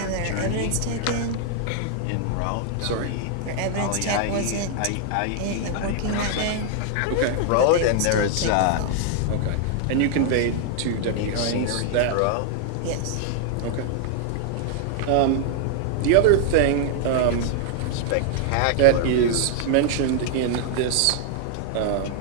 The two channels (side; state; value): both; different; correlation 0.00